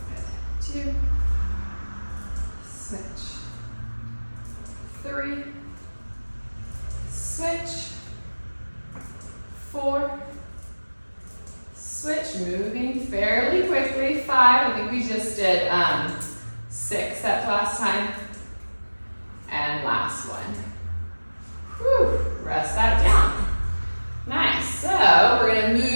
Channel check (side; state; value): both; inverted; correlation -1.00